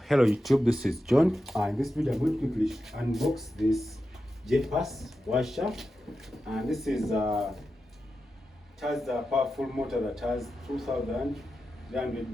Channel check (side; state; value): both; normal; correlation 0.90